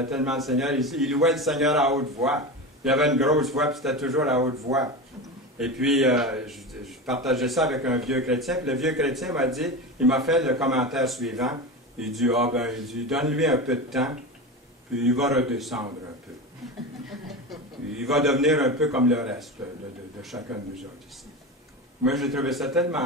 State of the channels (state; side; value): normal; both; correlation 0.24